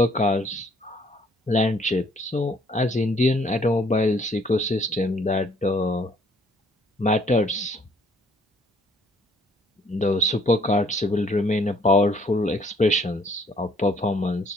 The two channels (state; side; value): normal; both; correlation 0.62